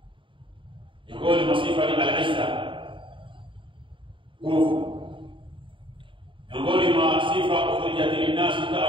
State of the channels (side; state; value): left; late; 0.25 ms